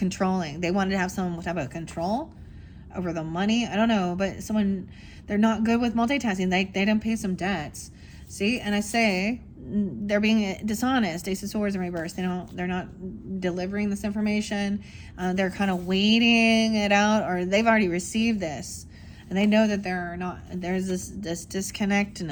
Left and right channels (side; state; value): both; identical; correlation 1.00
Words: They wanted to have some type of control over the money. I don't know, but someone, they're not good with multitasking. They didn't pay some debts. See, and I say they're being dishonest. Ace of Swords in reverse. They're not delivering this information. They're kind of waiting it out, or they've already received this, and they know that there's this disconnect and